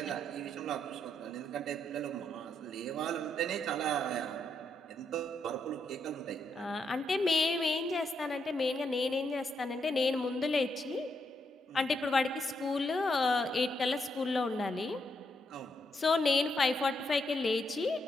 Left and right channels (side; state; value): both; normal; correlation 0.79